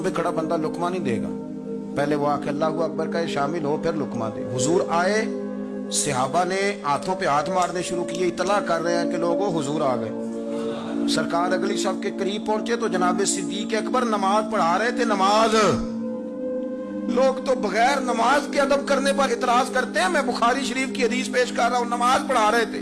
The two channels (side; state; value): both; identical; correlation 1.00